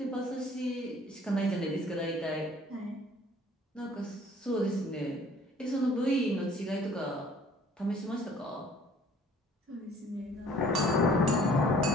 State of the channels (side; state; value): both; normal; correlation 0.55